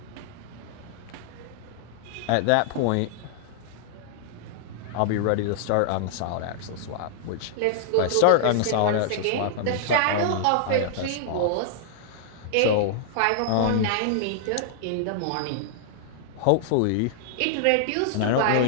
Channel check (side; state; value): both; different; correlation -0.01